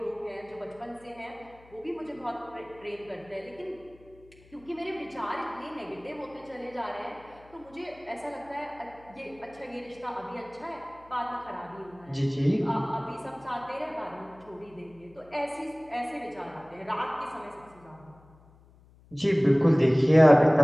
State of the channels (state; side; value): noise; left; hum, 26 dB below the sound